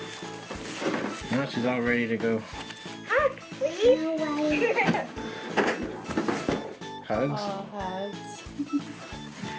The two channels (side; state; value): both; identical; correlation 1.00